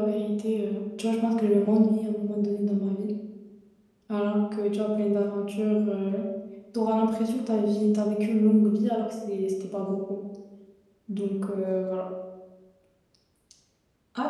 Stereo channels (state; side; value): identical; both; correlation 1.00